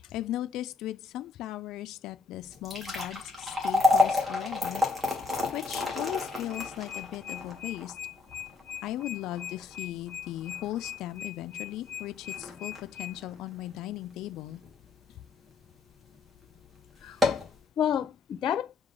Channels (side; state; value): right; quieter; 4.8 dB